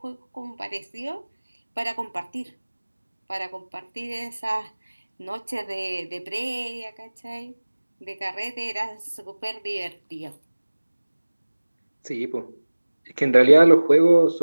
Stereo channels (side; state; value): both; inverted; correlation -1.00